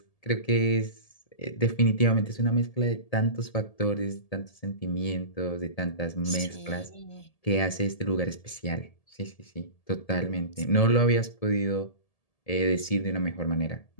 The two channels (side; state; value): right; late; 1.7 ms